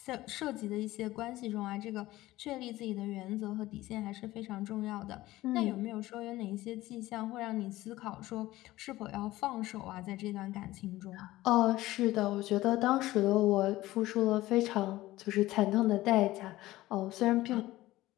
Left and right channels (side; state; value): right; quieter; 17.0 dB